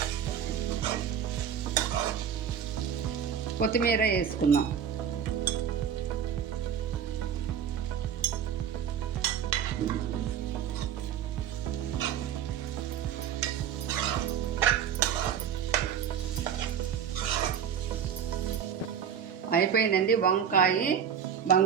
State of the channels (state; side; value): quieter; left; 8.4 dB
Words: కొత్తిమీర వేసుకుందాం. అయిపోయిందండి. వంకాయ,